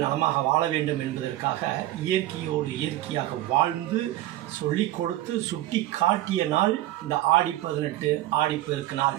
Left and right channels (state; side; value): quieter; left; 15.1 dB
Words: நலமாக வாழ வேண்டும் என்பதற்காக இயற்கையோடு இயற்கையாக வாழ்ந்து சொல்லிக் கொடுத்து சுட்டி காட்டிய நாள் இந்த ஆடி 18 ஆடிப்பெருக்கு நாள்.